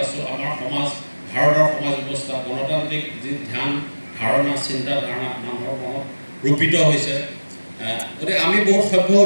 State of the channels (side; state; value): both; inverted; correlation -1.00